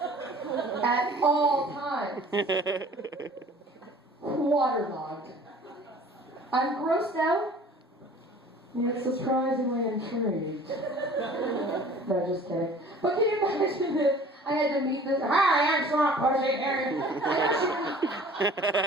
at all times. Waterlogged. I'm grossed out, yet surprisingly intrigued. No, just kidding. But can you imagine if I had to meet this? Hi, I'm Swamp Pussy.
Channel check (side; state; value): both; normal; correlation 0.48